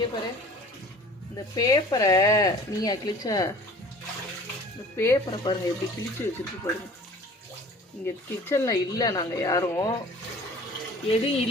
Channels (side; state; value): both; normal; correlation 0.46